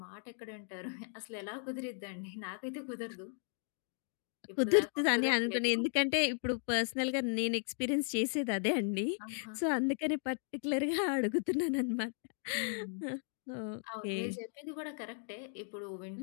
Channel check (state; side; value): silent; right; 54 dB below the other